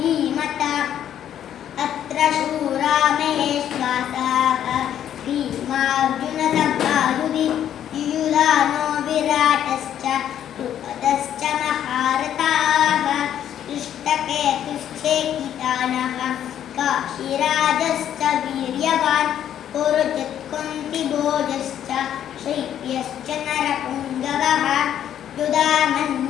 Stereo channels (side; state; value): right; quieter; 10.3 dB